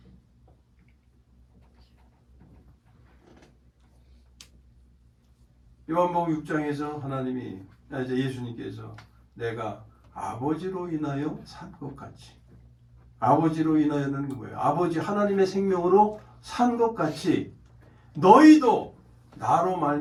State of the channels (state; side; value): identical; both; correlation 1.00